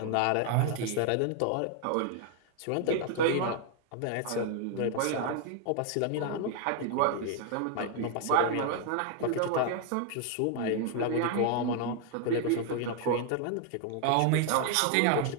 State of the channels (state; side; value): different; both; correlation 0.00